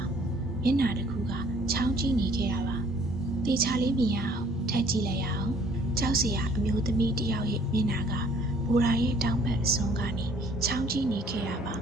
မျက်နှာတစ်ခုကချောင်းကြည့်နေခဲ့တာပါတေချာလေးမြင်ရအောင်ထပ်ကြည့်လိုက်ရအောင်ကြောက်စရာအမျိုးသမီးတစ်ယောက်ရဲ့မျက်နှာကဘူရာရဲ့တောင်ဘက်အစွန်းကနေချောင်းကြည့်နေခဲ့တာပါ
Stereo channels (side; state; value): both; normal; correlation 0.58